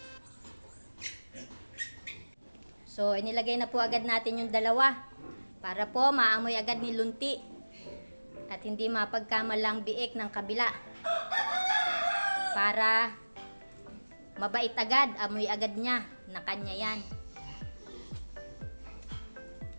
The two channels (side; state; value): both; inverted; correlation -1.00